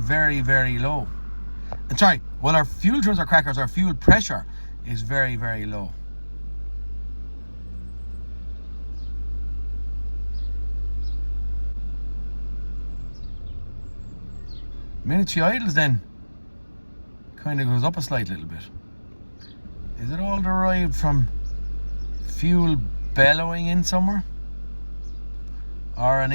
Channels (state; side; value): inverted; both; correlation -1.00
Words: very low. And sorry, while our fuel trims are crackers, our fuel pressure is very, very low. The minute she idles, then kind of goes up a slight little bit. Is it all derived from fuel bellowing in somewhere, or an